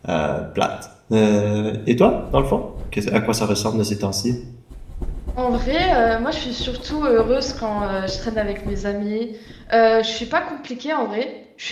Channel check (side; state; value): both; identical; correlation 1.00